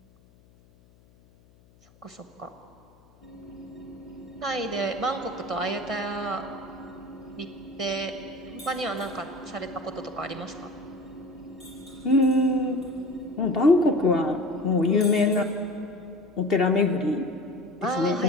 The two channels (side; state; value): left; noise; hum, 29 dB below the sound